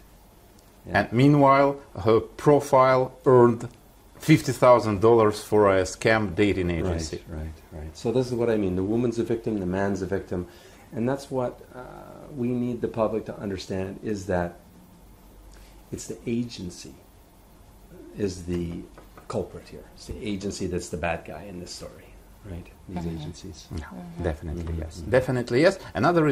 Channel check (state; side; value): identical; both; correlation 1.00